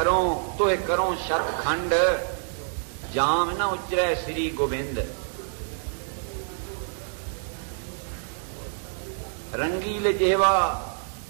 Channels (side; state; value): left; silent; digital silence